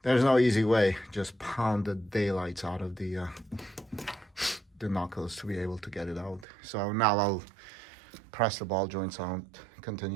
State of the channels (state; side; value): drops out; left; at 6.5 s